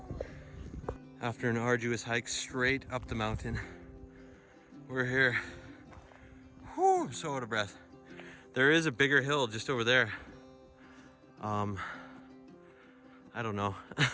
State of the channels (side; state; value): both; identical; correlation 1.00